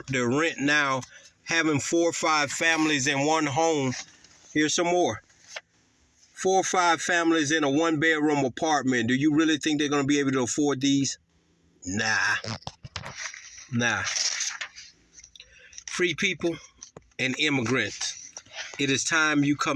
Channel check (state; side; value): identical; both; correlation 1.00